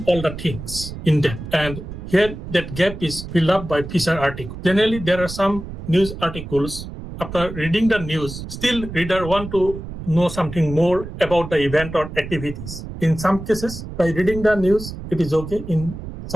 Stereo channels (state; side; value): noise; right; rumble, 10 dB below the sound